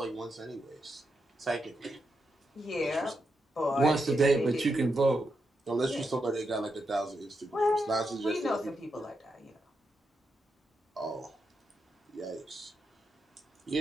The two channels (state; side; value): normal; both; correlation 0.84